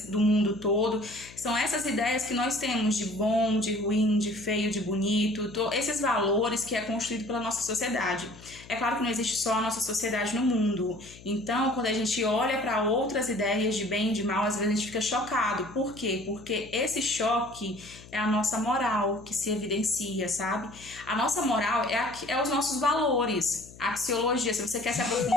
do mundo todo. São essas ideias que nós temos de bom, de ruim, de feio, de bonito, esses valores que é construído pela nossa sociedade. É claro que não existe só a nossa sociedade no mundo. Então, quando a gente olha para outras ideias de bem e de mal, às vezes a gente fica chocado. Por quê? Porque esse choque é a nossa moral que se evidencia, sabe? A nossa moral é os nossos valores. A axiologia, se você quer se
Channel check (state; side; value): noise; left; hum, 20 dB below the sound